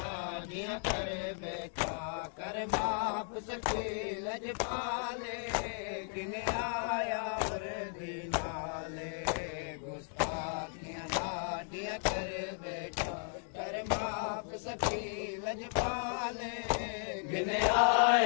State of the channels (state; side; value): silent; right; 54 dB below the other